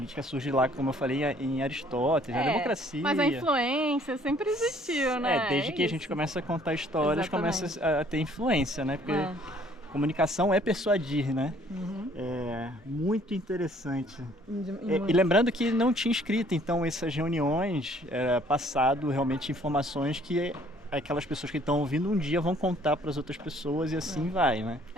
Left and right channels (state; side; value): normal; both; correlation 0.59